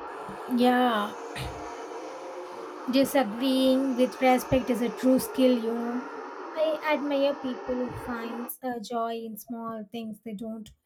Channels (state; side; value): identical; both; correlation 1.00